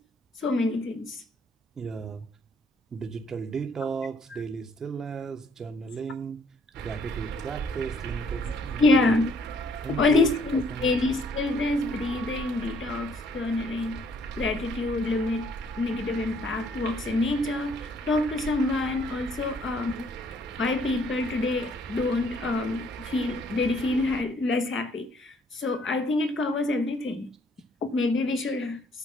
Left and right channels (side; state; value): both; normal; correlation 0.64